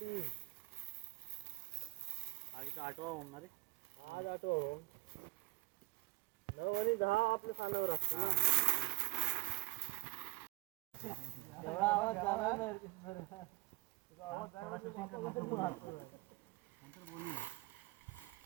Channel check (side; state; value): left; quieter; 24.1 dB